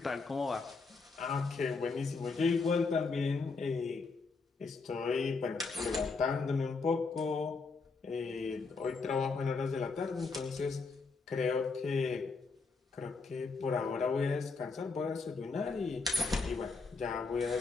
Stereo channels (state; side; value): quieter; right; 4.3 dB